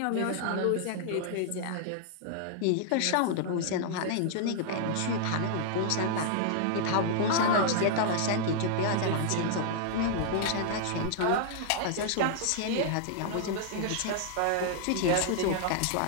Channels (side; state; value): both; different; correlation -0.01